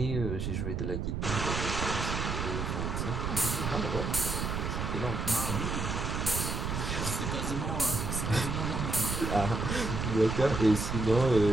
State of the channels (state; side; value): noise; right; rumble, 2 dB below the sound